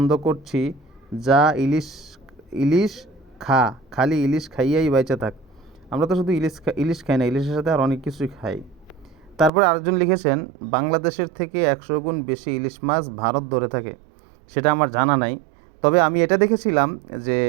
করছি, যা ইলিশ ইলিশ খা, খালি ইলিশ খাইয়াই বাইচা থাক। আমরা তো শুধু ইলিশ খাই না, ইলিশের সাথে আর অনেক কিছুই খাই। তারপরে আরেকজন লিখেছেন, বাংলাদেশের থেকে 100 গুণ বেশি ইলিশ মাছ ভারত ধরে থাকে, সেটা আমার জানা নাই। তবে আমি এটা দেখেছিলাম যে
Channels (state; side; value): drops out; left; at 9.5 s